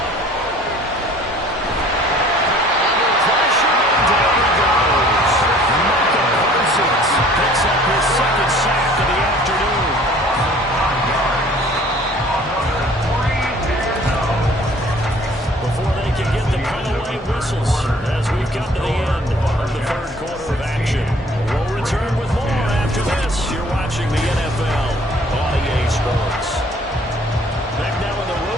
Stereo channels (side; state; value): both; normal; correlation 0.53